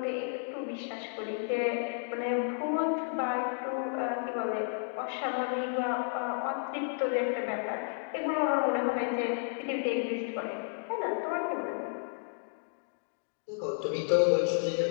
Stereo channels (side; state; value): right; silent; 56 dB below the other